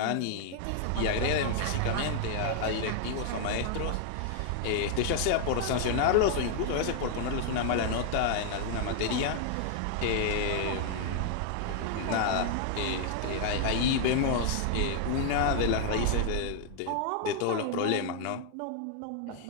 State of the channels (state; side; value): different; both; correlation 0.00